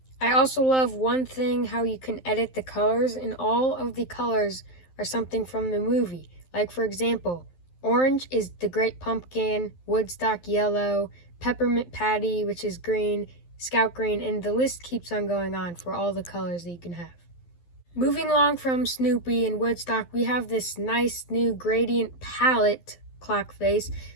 I also love one thing, how you can edit the colors, and all of the colors are something from the movie. Like, for example, orange is the Great Pumpkin, Woodstock yellow, Peppermint Patty, which is green, Scout green, and the list keeps on going on for all the colors that you can have. Moving along from Snoopy and Woodstock, we have this nice new gradient palette clock face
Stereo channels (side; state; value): right; late; 12 ms